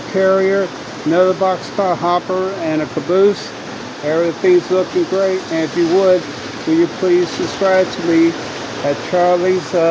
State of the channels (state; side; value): identical; both; correlation 1.00